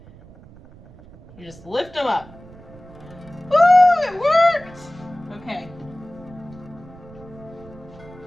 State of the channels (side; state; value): right; noise; rumble, 21 dB below the sound